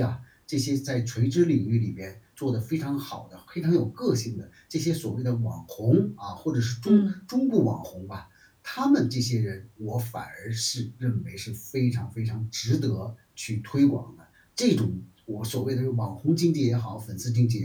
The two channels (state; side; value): identical; both; correlation 1.00